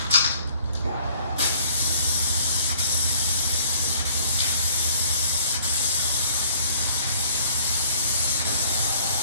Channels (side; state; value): both; inverted; correlation -0.56